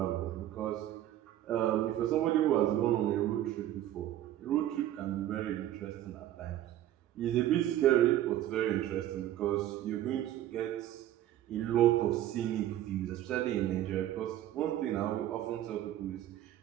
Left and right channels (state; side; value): quieter; left; 12.9 dB